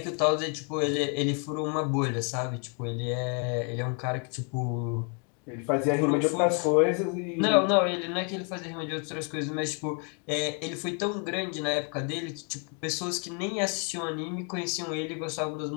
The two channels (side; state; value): right; quieter; 38.4 dB